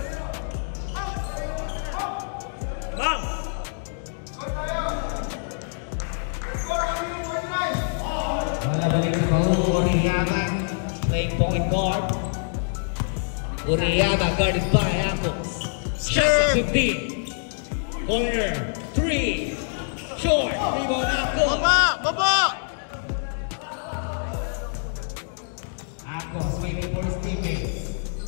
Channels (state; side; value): silent; right; digital silence